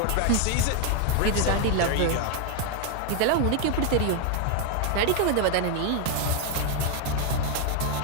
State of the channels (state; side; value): different; both; correlation 0.01